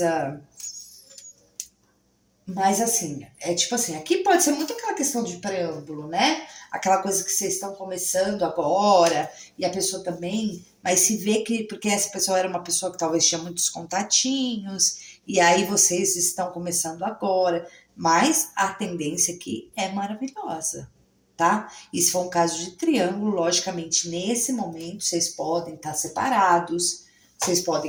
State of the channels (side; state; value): both; identical; correlation 1.00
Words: Mas assim, tipo assim, aqui pode ser muito aquela questão de preâmbulo, né? Aquela coisa que vocês estão começando agora, e a pessoa também, mas se vê que, porque essa pessoa era uma pessoa que talvez tinha muitos contatinhos, e aí vocês estão começando agora, mas a tendência aqui é maravilhosa, tá? E se for um caso de triângulo, logicamente, nesse momento, vocês podem estar separados, vocês